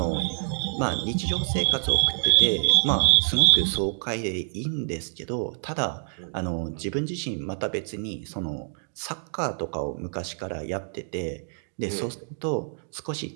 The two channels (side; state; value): left; silent; digital silence